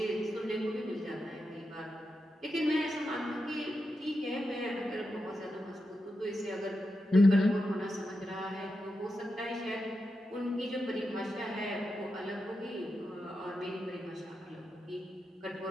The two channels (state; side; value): normal; both; correlation 0.88